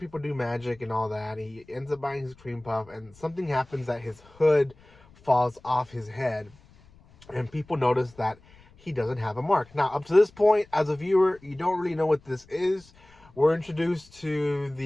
do magic and all that. He ends up buying his cream puff, and something happens that his hood falls off his head, and people notice that he doesn't have a mark. Now, up to this point, as a viewer, you don't really know what this is. We're introduced to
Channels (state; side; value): noise; left; rumble, 27 dB below the sound